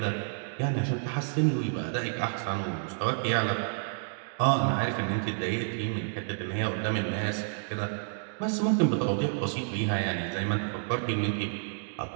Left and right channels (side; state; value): left; silent; digital silence